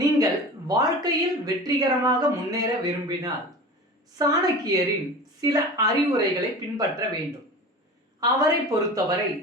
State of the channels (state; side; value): normal; both; correlation 0.34